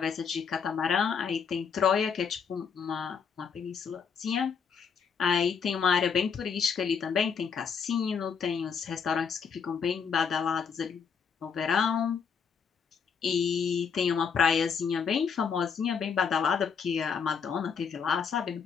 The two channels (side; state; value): right; quieter; 6.4 dB